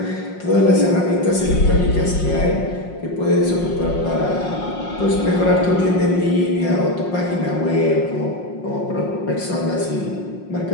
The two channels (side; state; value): right; late; 5.6 ms